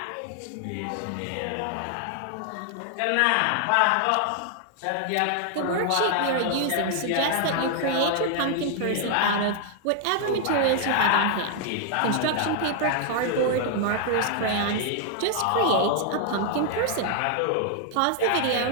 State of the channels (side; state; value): both; different; correlation 0.00